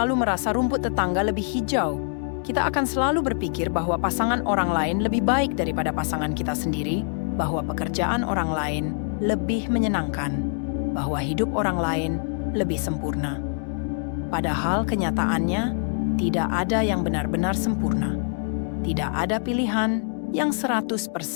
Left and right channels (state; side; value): silent; right; 60 dB below the other